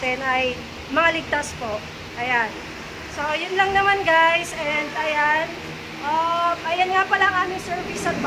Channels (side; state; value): both; identical; correlation 1.00